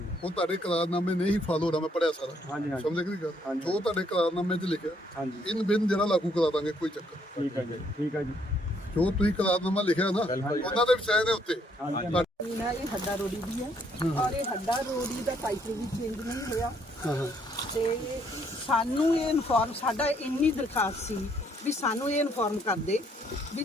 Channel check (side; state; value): both; normal; correlation 0.69